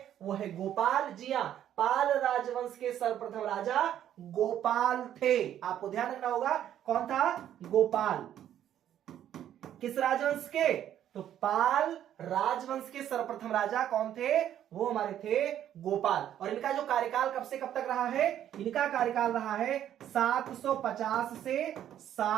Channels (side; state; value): left; quieter; 10.9 dB